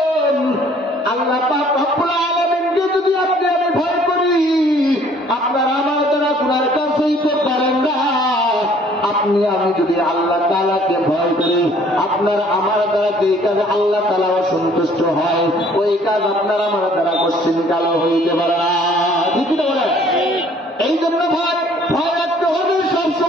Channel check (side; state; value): both; normal; correlation 0.58